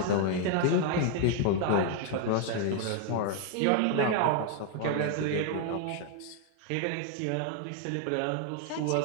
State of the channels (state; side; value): different; both; correlation 0.00